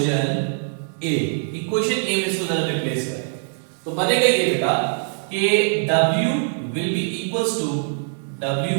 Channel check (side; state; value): left; silent; digital silence